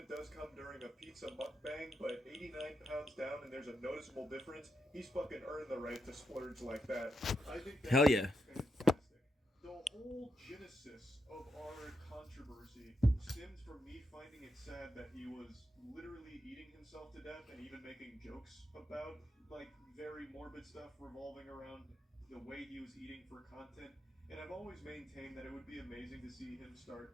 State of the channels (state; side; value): normal; both; correlation 0.83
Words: does come during a pizza mukbang, but 89 pounds down and there's a noticeable difference. He's fucking earned the right to splurge like that. I think Hell that's yeah. fantastic. The whole genesis of our controversy stemmed from me finding it sad that he was literally eating himself to death and even making jokes about like very morbid stuff revolving around the way he was eating for content. And I've always maintained that it would be amazing to see him start